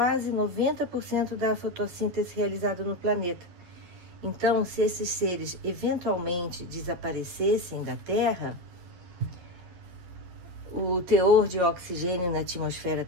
90% da fotossíntese realizada no planeta. Então, se esses seres eventualmente desaparecessem da Terra, o teor de oxigênio na atmosfera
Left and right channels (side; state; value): left; late; 11 ms